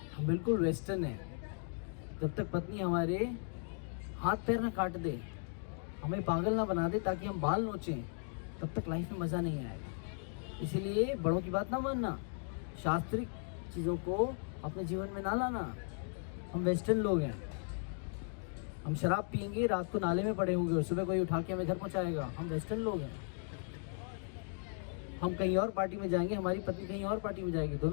हम बिल्कुल वेस्टर्न हैं। जब तक पत्नी हमारे हाथ पैर ना काट दे, हमें पागल ना बना दे ताकि हम बाल नोचें, तब तक लाइफ में मज़ा नहीं आएगा। इसीलिए बड़ों की बात ना मानना, शास्त्रिक चीज़ों को अपने जीवन में ना लाना। हम वेस्टर्न लोग हैं, हम शराब पियेंगे, रात को नाले में पड़े होंगे और सुबह कोई उठा के हमें घर पहुँचाएगा। हम वेस्टर्न लोग हैं। हम कहीं और पार्टी में जाएंगे, हमारी पत्नी कहीं और पार्टी में जाएगी,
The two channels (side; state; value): right; silent; 53 dB below the other